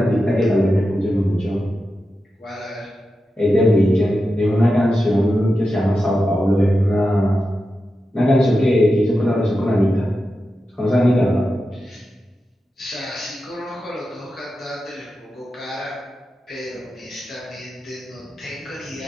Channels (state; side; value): normal; both; correlation 0.90